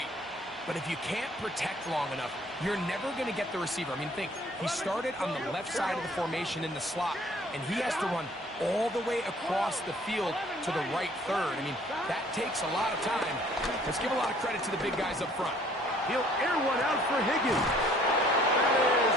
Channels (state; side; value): normal; both; correlation 0.57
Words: But if you can't protect long enough, you're never going to get the receiver. I mean, think, he started on the left side of the formation in the slot, and he has to run all the way across the field to the right third. I mean, that takes a lot of time. Let's give a lot of credit to the big guys up front. He'll air one out for Higgins. That